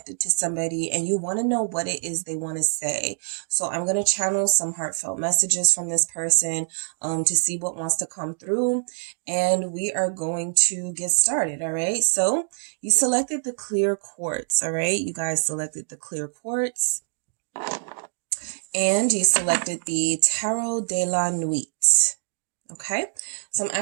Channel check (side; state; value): left; silent; digital silence